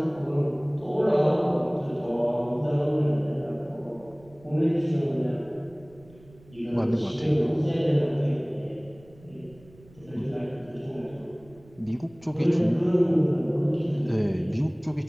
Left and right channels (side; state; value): right; noise; rumble, 25 dB below the sound